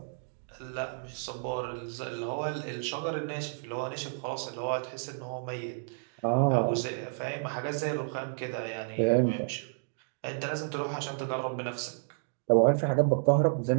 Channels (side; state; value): left; silent; digital silence